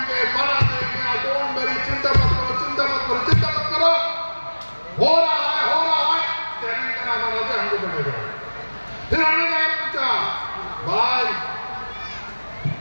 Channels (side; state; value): both; inverted; correlation -1.00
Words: डोंट वरी, चिंता मत करो, चिंता मत करो, चिंता मत करो, हो रहा है, ट्रेनिंग का नाम बना दे, हमको बनेगा। फिर हमने क्या पूछा, भाई